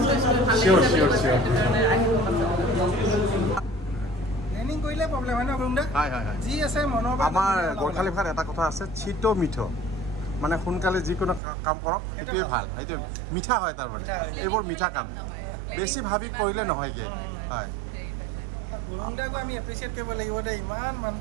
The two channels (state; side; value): drops out; left; at 11.4 s